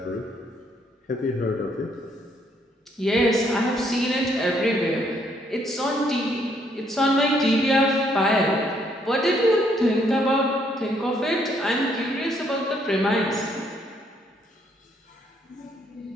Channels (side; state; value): both; normal; correlation 0.70